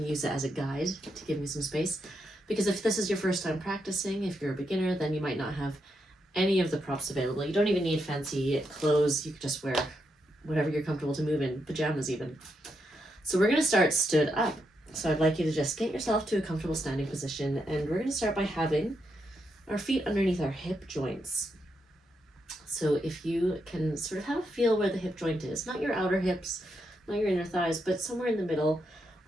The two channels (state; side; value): normal; both; correlation 0.82